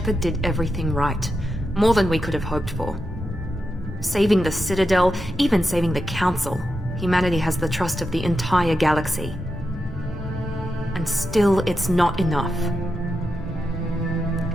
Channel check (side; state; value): both; normal; correlation 0.88